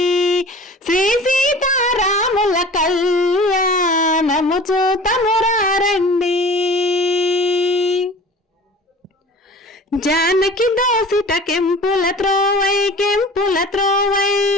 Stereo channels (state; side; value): normal; both; correlation 0.42